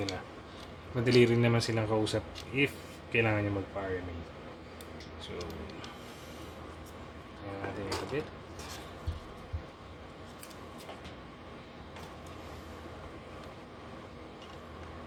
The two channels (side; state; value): both; identical; correlation 1.00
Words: Madali rin naman silang kausap if kailangan nyo magpa-RMA. So, kaya natin yung kabit.